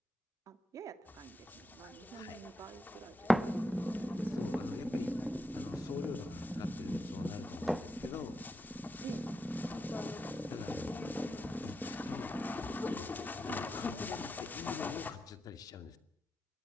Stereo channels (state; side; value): normal; both; correlation 0.86